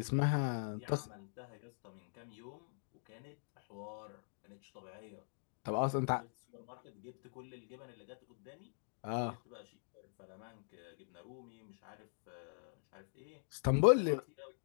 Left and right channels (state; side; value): silent; right; digital silence